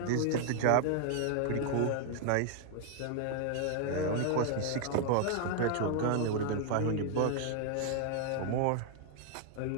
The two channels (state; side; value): different; both; correlation 0.00